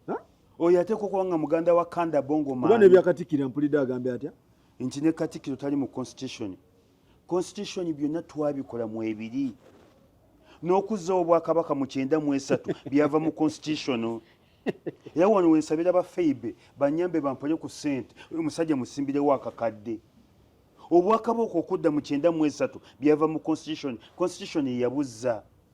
Oyo ateekwa okuba nga muganda wa Kanda Bongo Maani. Kuba ne byakatikkira mpulidde agambe atya? Nti ne Katikkiro tali mu constitution. Constitution byonna twabikola mu ebiri. N'okuzzawo Obwakabaka mu 93 byava mu constitution. Era wano wensabira ba Feibe banyambe bampole ku ssente. Oyo musajja musimbirewo akakadde. Obwakabaka okudda mu 93 byava mu constitution. Constitution yeyabuzza.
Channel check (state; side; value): identical; both; correlation 1.00